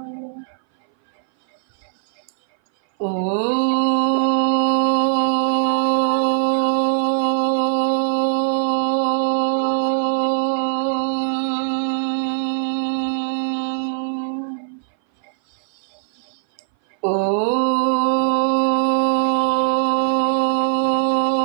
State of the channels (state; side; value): silent; left; 60 dB below the other